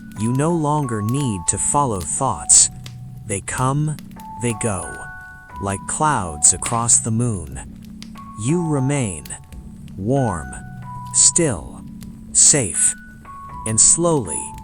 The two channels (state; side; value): identical; both; correlation 1.00